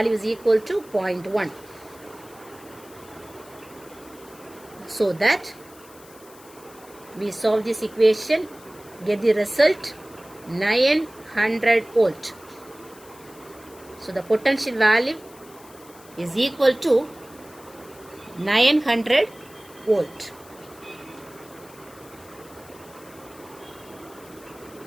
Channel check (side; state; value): left; noise; hiss, 23 dB below the sound